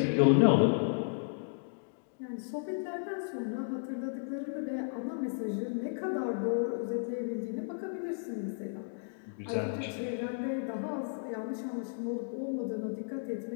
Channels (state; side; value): silent; right; digital silence